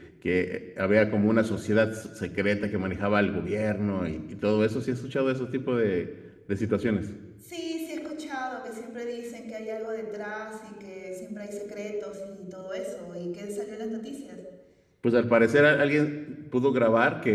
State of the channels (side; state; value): both; identical; correlation 1.00